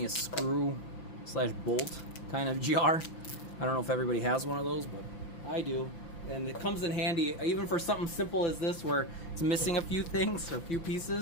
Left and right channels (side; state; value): right; late; 6.0 ms